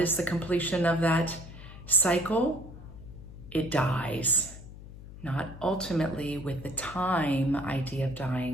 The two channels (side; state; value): left; noise; hum, 15 dB below the sound